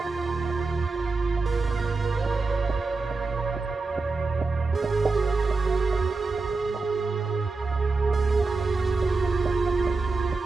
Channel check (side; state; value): left; quieter; 3.9 dB